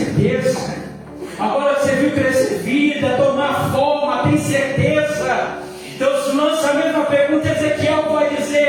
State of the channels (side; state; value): both; identical; correlation 1.00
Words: Agora você viu crescer vida, tomar forma, tem certeza? Deus lança a mesma pergunta. Ezequiel vai